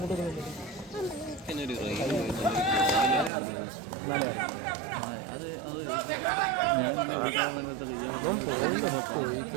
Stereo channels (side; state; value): left; drops out; at 3.3 s